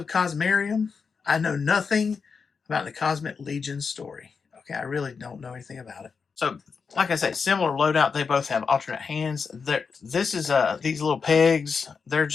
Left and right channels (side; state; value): right; quieter; 5.5 dB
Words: Cosmarium. I know nothing about the Cosmic Legion story. Okay, I really don't know anything about it. So, like I said, similar loadout. They both have alternate hands. This is these little pegs. They're